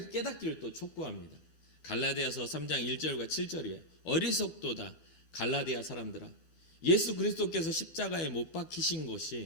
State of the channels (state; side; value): late; right; 12 ms